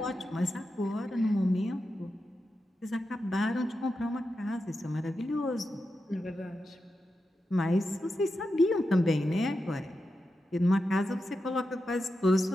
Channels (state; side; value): normal; both; correlation 0.89